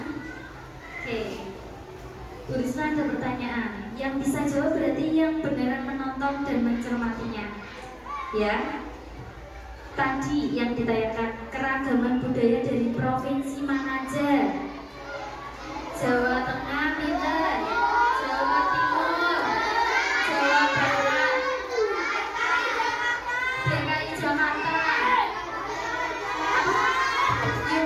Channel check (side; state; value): both; identical; correlation 1.00